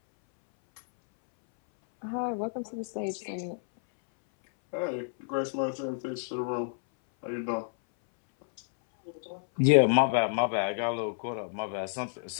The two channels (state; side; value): silent; right; 58 dB below the other